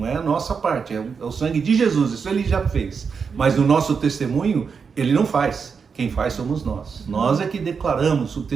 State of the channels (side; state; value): left; quieter; 5.8 dB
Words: é a nossa parte, é o sangue de Jesus, isso ele já fez. Mas no nosso testemunho, ele não faz. Quem faz somos nós. Nós é que declaramos o